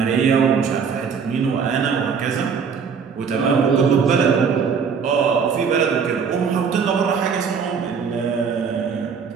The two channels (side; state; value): left; quieter; 6.2 dB